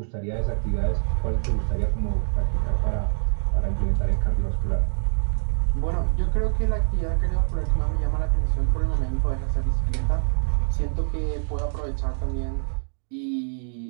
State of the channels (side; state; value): left; silent; 60 dB below the other